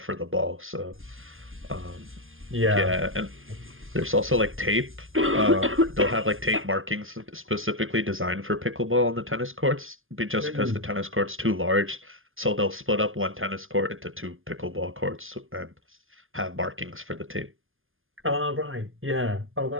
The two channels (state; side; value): late; left; 0.59 ms